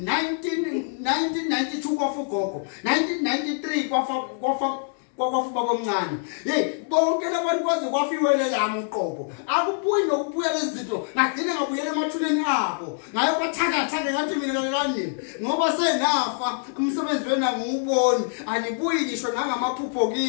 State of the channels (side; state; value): right; silent; digital silence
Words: 1992 kwafu ugogo 1993 kwafa baba omncane bonke labantu kwaze kwafiwele lami uqobo akubuyi nokubuya lezinto ngagcina ngabuyela emathuleni abo ngayo bathakathake ngathi mina kanini ngoba senafa umsebenzi wena ngiwuboni anibuyi ngisho ngamaphupho